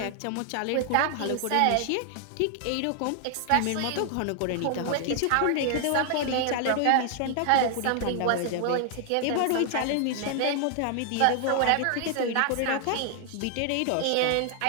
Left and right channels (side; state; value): both; different; correlation 0.00